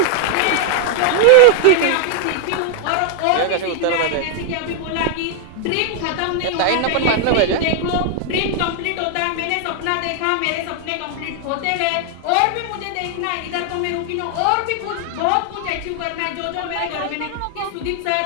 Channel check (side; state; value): both; different; correlation 0.00